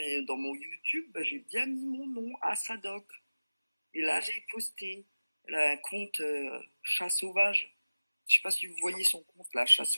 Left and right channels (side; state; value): both; inverted; correlation -0.98